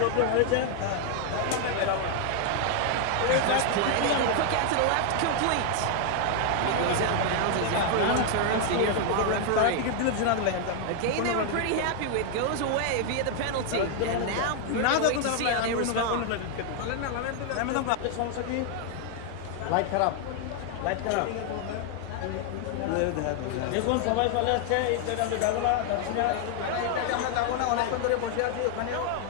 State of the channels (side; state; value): both; different; correlation 0.00